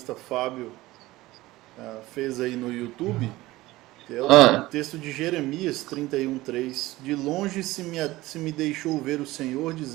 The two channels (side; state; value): left; quieter; 18.3 dB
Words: Fábio fez aí no YouTube, que é o texto de Jeremias 31:3. De longe se me deixou ver o Senhor,